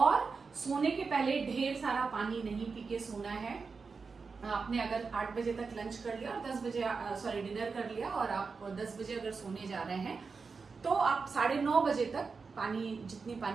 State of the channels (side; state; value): left; quieter; 4.8 dB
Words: सोने के पहले ढेर सारा पानी नहीं पी के सोना है। आपने अगर 8 बजे तक लंच कर लिया और 10 बजे डिनर कर लिया और आप 10 बजे अगर सोने जा रहे हैं तो आप 9:30 बजे तक जितनी